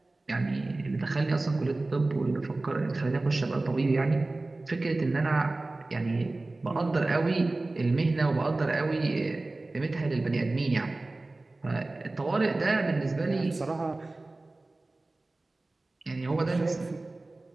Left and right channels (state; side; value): quieter; left; 3.1 dB